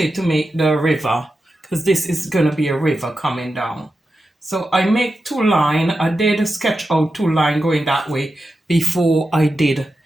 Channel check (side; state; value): both; normal; correlation 0.90